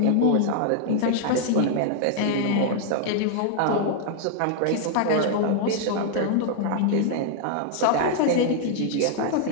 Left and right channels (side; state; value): both; different; correlation 0.00